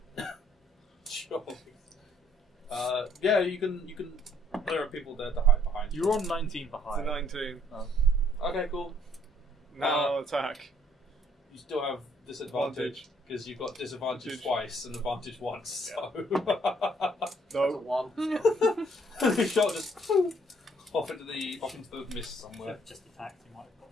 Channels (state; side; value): normal; both; correlation 0.66